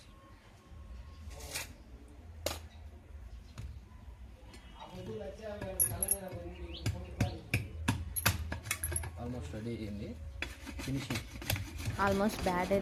ఆల్మోస్ట్ రెడీ అయింది. ఫినిషింగ్ ఆల్మోస్ట్ బ్యాట్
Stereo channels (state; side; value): identical; both; correlation 1.00